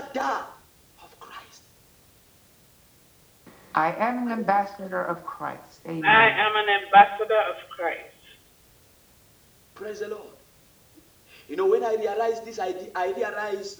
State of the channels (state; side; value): identical; both; correlation 1.00